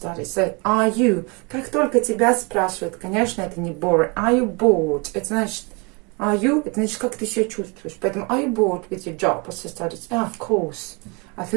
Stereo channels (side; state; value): left; quieter; 30.3 dB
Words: So, are you? Как только тебя спрашивают, конечно, это не boring. Are you bored? Это значит, are you? Это значит, как ты себя чувствуешь. Поэтому, are you bored with your job or your studies? Oh, of course. I